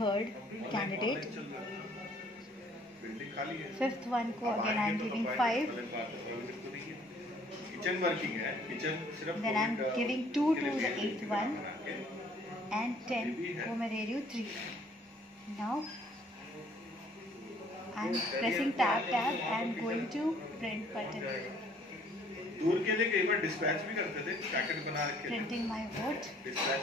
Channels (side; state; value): both; normal; correlation 0.59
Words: third candidate. Fifth one को again I am giving 5. Kitchen working है, kitchen सिर्फ then I'm giving 2 to the 8th one and 10 को मैं दे रही हूँ 3. now I'm pressing tab and going to print button. दूर के लिए कई बार डिस्पैच भी करते थे, पैकेट बना रखे printing my vote डिस्पैच